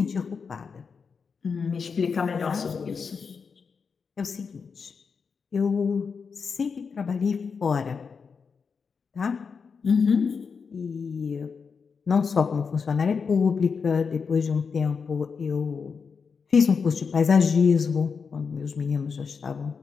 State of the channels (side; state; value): right; quieter; 5.6 dB